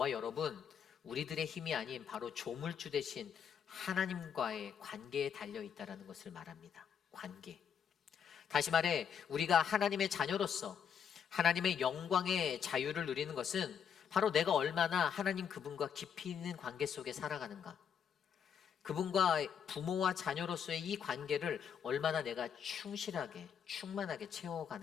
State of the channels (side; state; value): right; quieter; 7.8 dB